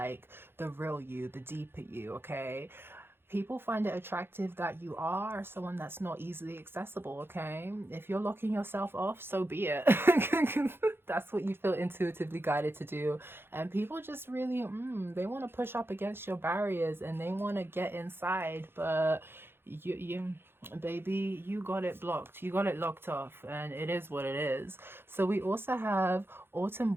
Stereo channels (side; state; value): left; late; 0.11 ms